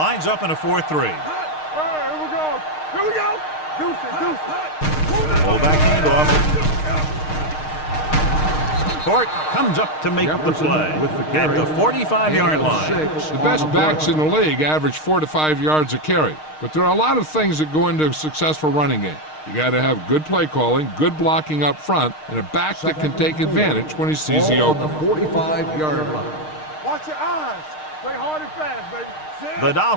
up in a 4-3. All right, here we go. Here we go. Deuce. Full back handoff. Court comes up to make the Jefferson play with the at carry. the 45-yard line. The best backs in the league average 4 to 5 yards a carry. But there are a lot of things that go into a successful running game. You got to have good play calling, good blocking up front, and a back that can take advantage when he sees the Ball on opening. the 45-yard line. Watch your eyes. Play hard and fast, baby. The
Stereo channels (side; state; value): right; late; 6.5 ms